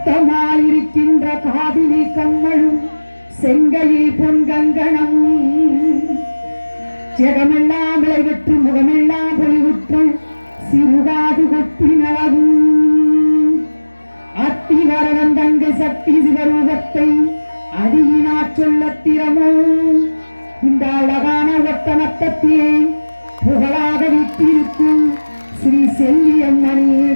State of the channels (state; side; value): inverted; both; correlation -1.00